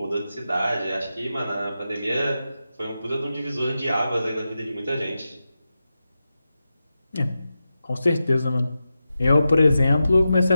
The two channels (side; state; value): both; inverted; correlation -0.91